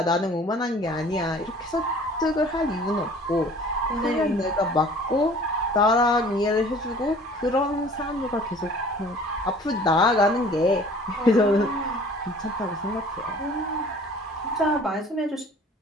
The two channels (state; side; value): normal; both; correlation 0.49